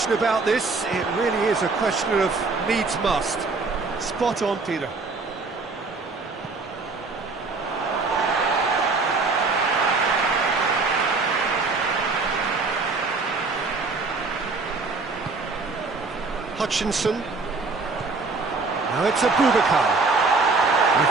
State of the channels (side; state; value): left; quieter; 4.0 dB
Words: about this. It really is a question of needs must. Spot on, Peter. Hutchinson. Now it's Abubakar.